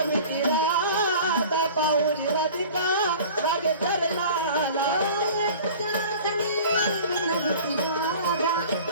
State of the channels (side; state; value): both; inverted; correlation -0.43